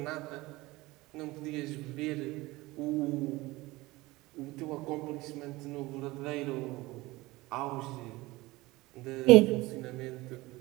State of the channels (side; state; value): left; quieter; 20.5 dB